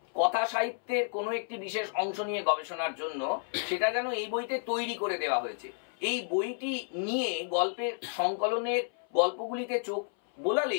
কথা সাহিত্যের কোনো একটি বিশেষ অংশ নিয়ে গবেষণার জন্য, সেটা যেন এই বইতে তৈরি করে দেওয়া হয়েছে। এই বইটি নিয়ে গল্পের সংকলনের গল্পগুলিতে চোখ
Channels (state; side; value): silent; right; 57 dB below the other